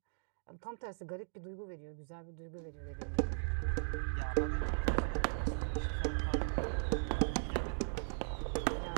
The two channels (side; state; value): left; silent; digital silence